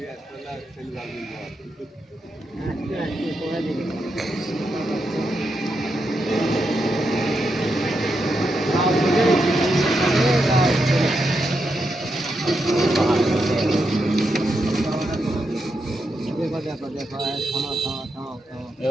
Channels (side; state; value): both; normal; correlation 0.84